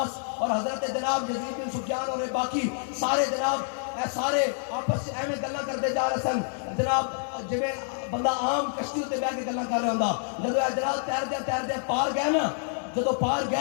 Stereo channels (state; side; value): silent; right; 60 dB below the other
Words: اور حضرت جناب یزید بن سفیان اور باقی سارے جناب سارے آپس سے ایویں گلاں کرتے جا رہے سن جناب جویں بندہ عام کشتی تے بیٹھ کے گلاں کر رہا ہوندا. جدو جناب تیردے پار گئے نا, جدو پار